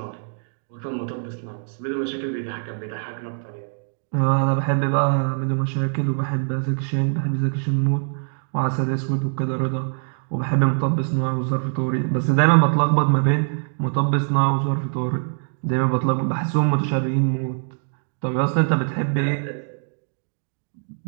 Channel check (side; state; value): left; silent; 63 dB below the other